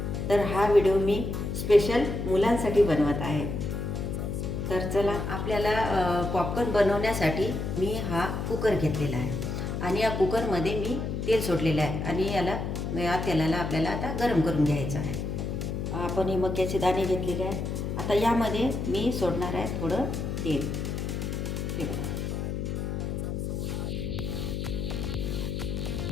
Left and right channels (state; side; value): noise; left; hum, 3 dB below the sound